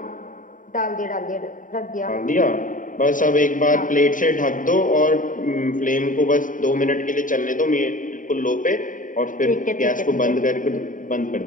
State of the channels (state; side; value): late; right; 0.38 ms